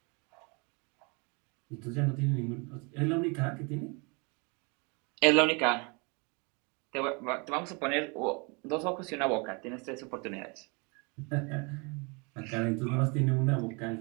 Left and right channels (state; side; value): quieter; left; 31.3 dB